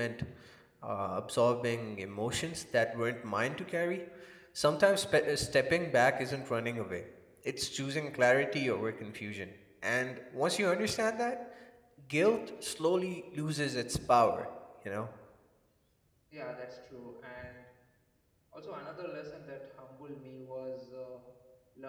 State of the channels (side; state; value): both; identical; correlation 1.00